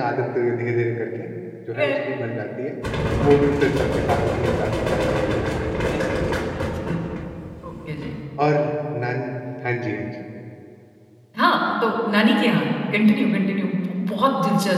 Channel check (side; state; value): both; identical; correlation 1.00